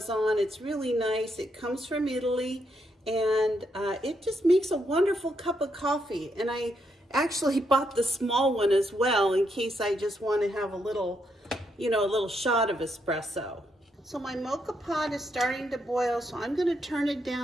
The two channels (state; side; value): normal; both; correlation 0.78